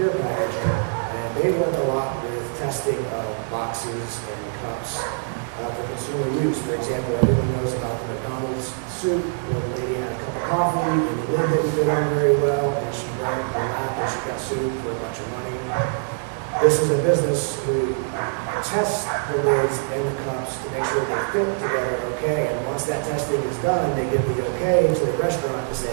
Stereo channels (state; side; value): silent; left; 63 dB below the other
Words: Packaging, and they work a lot with testing of boxes and cups for consumer use. For example, everyone knows about the McDonald's soup where the lady had a cup of coffee and the lid didn't fit on very well, and she burned her lap and she got sued for a bunch of money. This is a business who tests the lids and the cups to make sure they fit together okay, and once that testing is done, they give the okay to the restaurant to